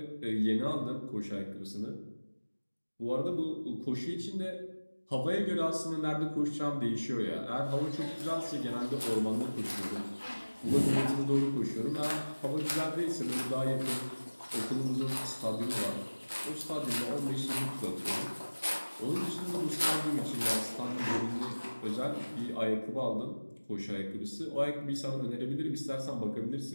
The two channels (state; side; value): inverted; both; correlation -1.00